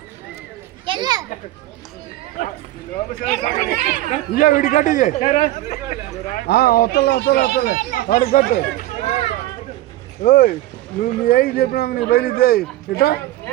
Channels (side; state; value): left; quieter; 15.8 dB